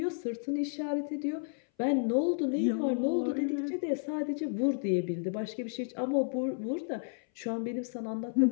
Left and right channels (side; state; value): right; silent; 56 dB below the other